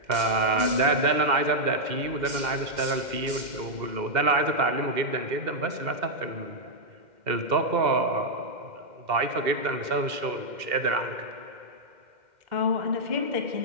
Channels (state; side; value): late; left; 2.1 ms